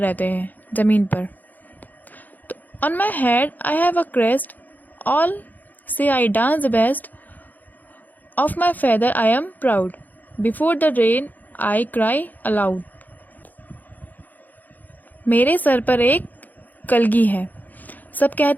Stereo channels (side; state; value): right; late; 0.083 ms